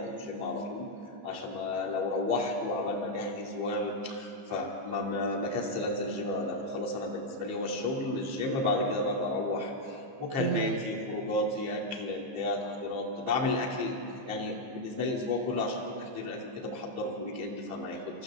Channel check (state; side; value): late; left; 15 ms